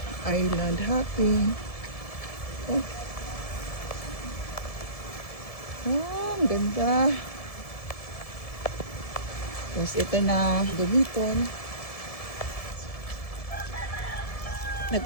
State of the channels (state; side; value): late; right; 1.7 ms